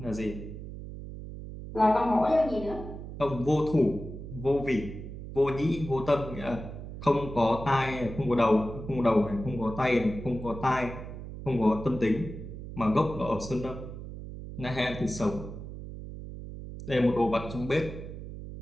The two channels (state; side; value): noise; right; hum, 10 dB below the sound